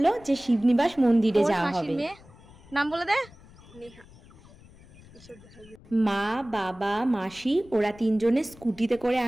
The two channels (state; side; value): noise; left; rumble, 23 dB below the sound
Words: যে শিবনিবাস মন্দিরে যাওয়া হবে। নাম বলে দে। মা, বাবা, মাসি ওরা তিনজনে স্কুটিতে করে